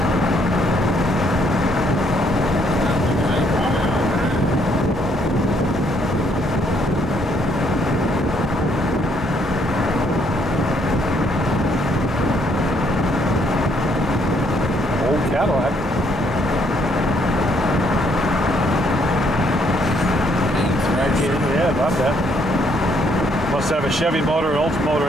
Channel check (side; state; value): both; normal; correlation 0.69